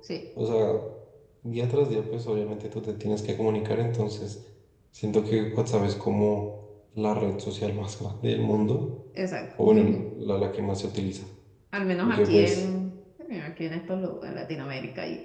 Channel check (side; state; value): both; identical; correlation 1.00